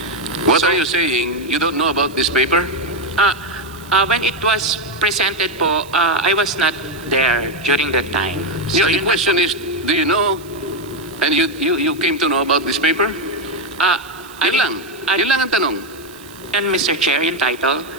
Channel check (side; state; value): right; noise; hiss, 22 dB below the sound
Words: What are you saying? You don't know about this paper? When it was presented po, I was not there during that time. So the yun question is, do you know? And you came to know about this paper? Yun lang. Yun lang ang tanong. And Mr. Chair, yung title,